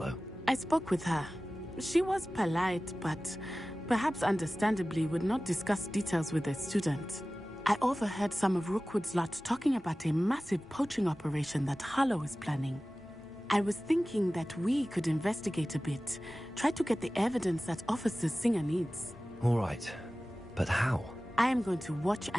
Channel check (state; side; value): normal; both; correlation 0.97